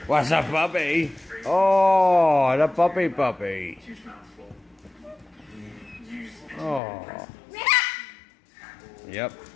What's up, puppy? Oh, the puppy. Oh. Yep.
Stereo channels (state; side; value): drops out; right; at 6.8 s